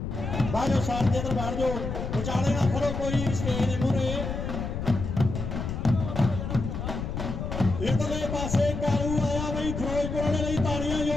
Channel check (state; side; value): noise; left; rumble, 4 dB below the sound